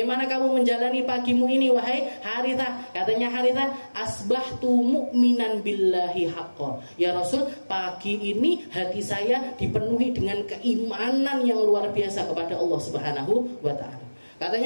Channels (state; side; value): inverted; both; correlation -1.00